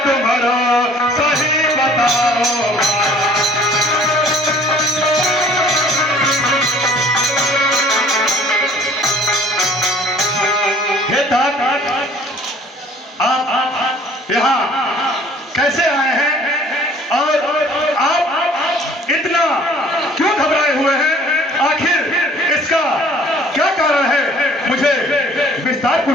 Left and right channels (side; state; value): both; normal; correlation 0.53